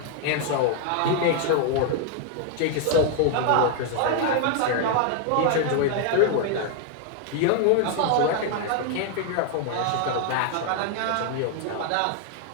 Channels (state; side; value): different; both; correlation 0.00